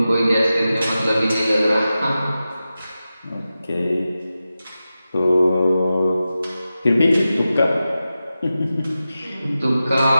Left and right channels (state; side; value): inverted; both; correlation -0.93